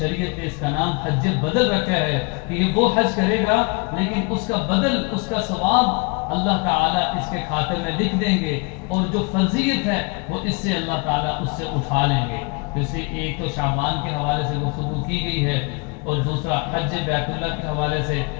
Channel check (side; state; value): right; quieter; 30.6 dB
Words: نے اس کا نام حج بدل رکھا ہے کہ یہ وہ حج کرے گا لیکن اس کا بدل، اس کا ثواب اللہ تعالیٰ اس کے خاطر میں لکھ دیں گے، اور جو فرضیت ہے وہ اس سے اللہ تعالیٰ اس سے اٹھا لیں گے. تو اس لیے ایک تو شعبان کے حوالے سے گفتگو کی گئی ہے، اور دوسرا حج بیت اللہ کے حوالے سے